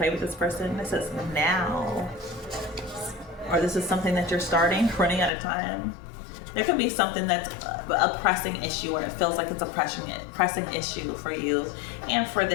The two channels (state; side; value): drops out; right; at 5.3 s